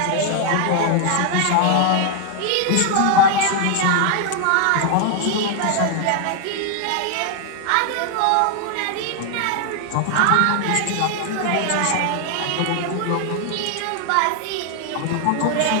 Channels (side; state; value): both; different; correlation 0.00